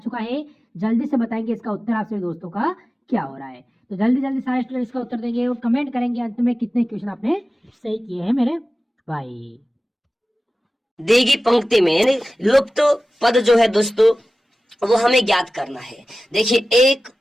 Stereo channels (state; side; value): normal; both; correlation 0.96